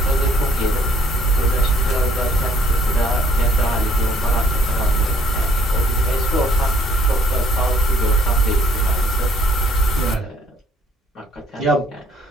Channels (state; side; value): normal; both; correlation 0.63